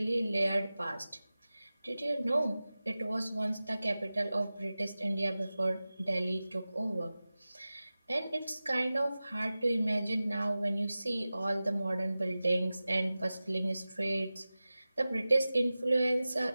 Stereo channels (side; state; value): both; inverted; correlation -0.96